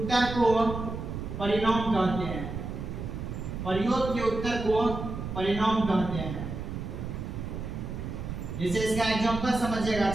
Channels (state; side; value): noise; right; rumble, 6 dB below the sound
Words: को परिणाम कहते हैं, प्रयोग के उत्तर को परिणाम कहते हैं। जैसे इसका एग्जांपल समझिएगा